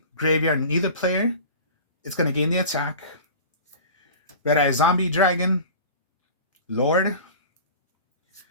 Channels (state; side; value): inverted; both; correlation -0.38